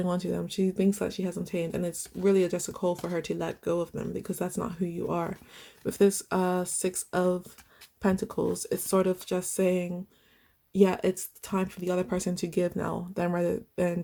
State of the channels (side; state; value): both; identical; correlation 1.00